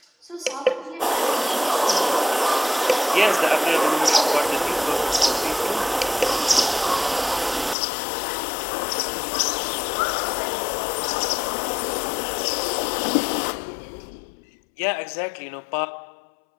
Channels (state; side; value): drops out; right; at 7.8 s